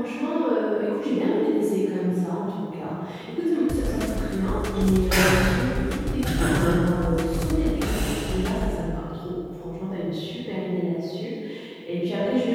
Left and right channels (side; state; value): both; identical; correlation 1.00